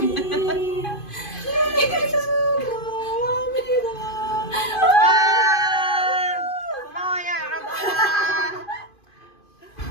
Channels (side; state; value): right; late; 2.5 ms